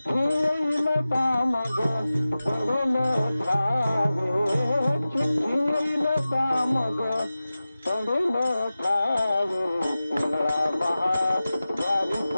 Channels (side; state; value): both; inverted; correlation -0.96